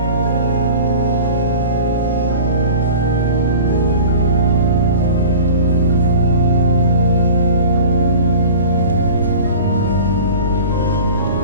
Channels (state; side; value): inverted; both; correlation -0.39